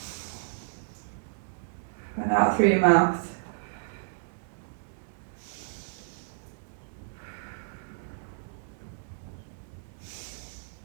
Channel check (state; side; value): silent; left; 57 dB below the other